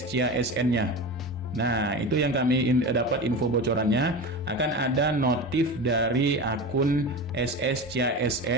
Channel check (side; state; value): both; normal; correlation 0.27